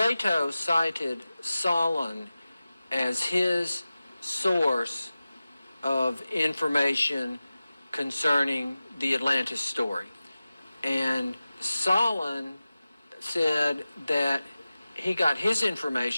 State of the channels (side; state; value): both; inverted; correlation -0.95